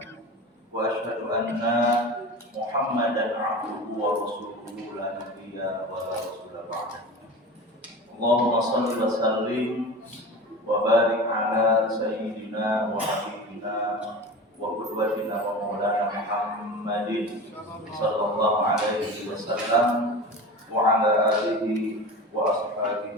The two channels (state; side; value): normal; both; correlation 0.31